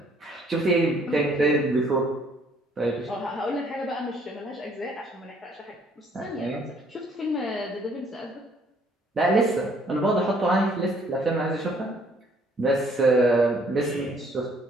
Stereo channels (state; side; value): normal; both; correlation 0.63